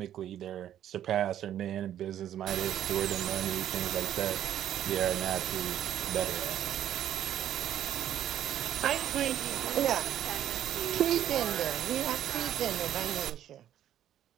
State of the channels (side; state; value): left; quieter; 11.1 dB